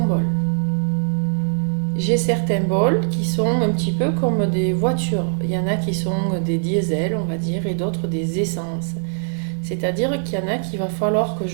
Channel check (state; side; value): silent; left; 59 dB below the other